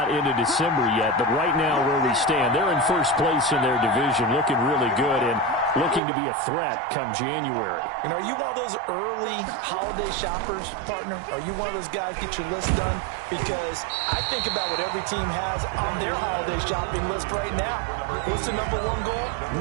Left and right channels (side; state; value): left; drops out; at 6.0 s